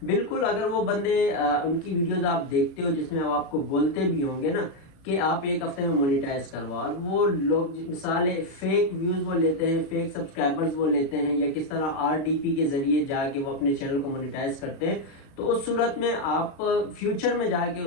बिल्कुल, अगर वो बंदे उनकी वीडियोस आप देखते हो जिसमें अब आपको बोलते भी होंगे ना कि आप एक हफ्ते में मोनेटाइज करवाओ, और वो लोग मिसाल फेक व्यूज वो लेते हैं, फेक सब्सक्राइबर्स वो लेते हैं या किस तरह RDP के जरिए जाके वो अपने चैनल को मोनेटाइज करते हैं, तो उस सूरत में आप फ्यूचर में जाके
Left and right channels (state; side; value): late; right; 36 ms